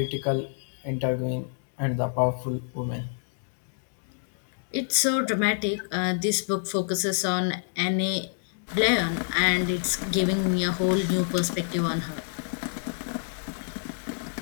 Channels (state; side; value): silent; right; digital silence